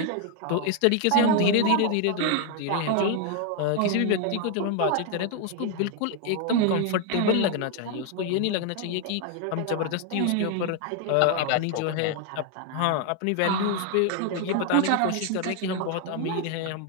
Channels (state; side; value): different; both; correlation 0.01